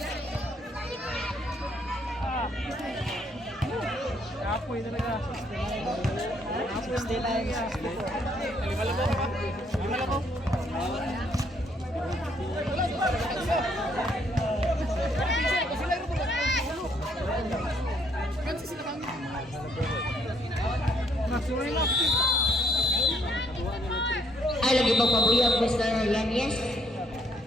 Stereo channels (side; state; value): both; normal; correlation 0.68